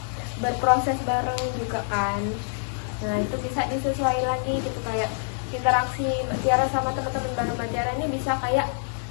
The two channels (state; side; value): silent; right; 61 dB below the other